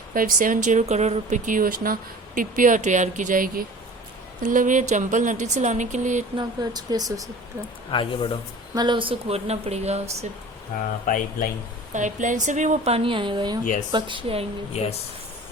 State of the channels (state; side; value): normal; both; correlation 0.42